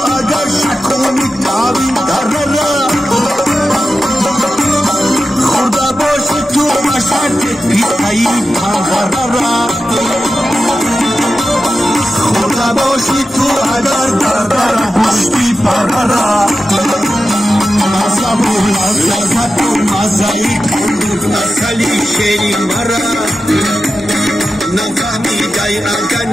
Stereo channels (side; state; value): both; normal; correlation 0.92